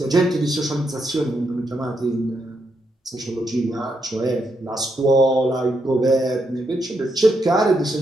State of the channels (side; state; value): both; normal; correlation 0.81